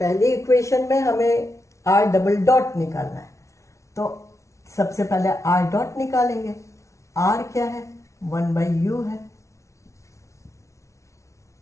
इक्वेशन में हमें r डबल डॉट निकालना है, तो सबसे पहले r डॉट निकालेंगे। r क्या है, 1/u है।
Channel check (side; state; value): right; late; 0.14 ms